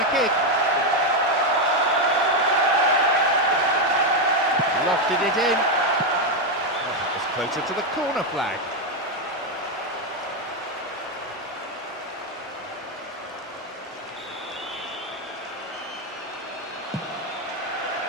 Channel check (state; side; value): normal; both; correlation 0.06